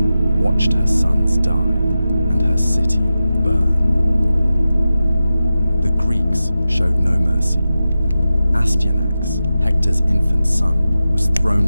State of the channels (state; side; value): inverted; both; correlation -0.93